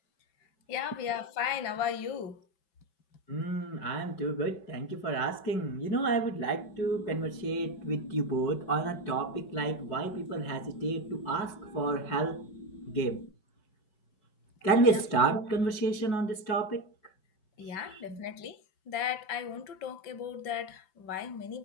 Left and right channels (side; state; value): right; late; 5.3 ms